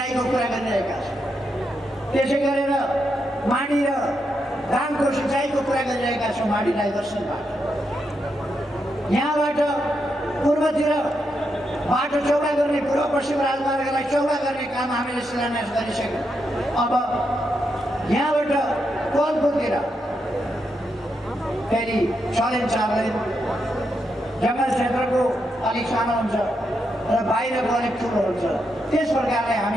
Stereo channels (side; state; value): both; normal; correlation 0.83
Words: कुरा गरिरहेका छौँ। त्यसै गरेर माडी र धानको सिँचाइको कुरा गरिरहेका छौँ माडी डाइभर्सनबाट। यहाँबाट पूर्वतिर बाटो चौडा गर्ने, पूर्व पश्चिम राजमार्गलाई चौडा गर्ने काम हामीले शिलान्यास गरिसक्यौँ। अब यहाँबाट कोलपुरतिर फेरि 6 लेन 4 लेन जङ्गल क्षेत्रको अलिक सानो हुन्छ र बाहिरको अलिक ठुलो हुन्छ। त्यस प्रकारले